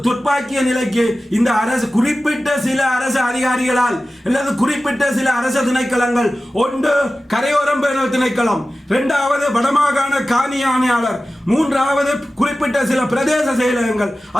துப்பாக்கிய நிலைக்கு இந்த அரசு குறிப்பிட்ட சில அரசு அதிகாரிகளால் அல்லது குறிப்பிட்ட சில அரசு திணைக்களங்கள், ஒன்று கரையோரம் பேணல் திணைக்களம், 2வது வடமாகாண காணி ஆணையாளர், 3வது குறிப்பிட்ட சில பிரதேச செயலகங்கள்,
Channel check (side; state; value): both; normal; correlation 0.95